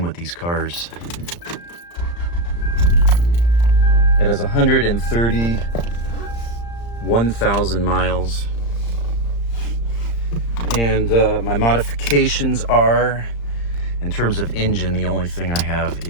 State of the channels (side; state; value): right; late; 35 ms